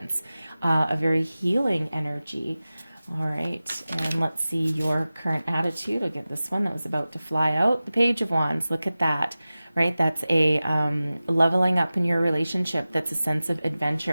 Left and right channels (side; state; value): both; inverted; correlation -0.96